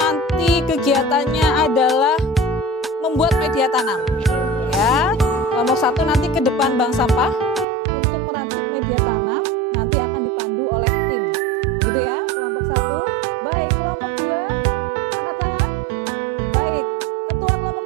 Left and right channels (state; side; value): drops out; left; at 7.7 s